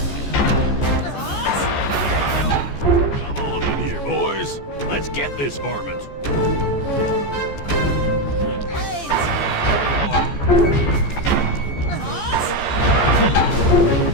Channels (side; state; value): right; late; 14 ms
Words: Come on in here, boys. Let's get this varmint.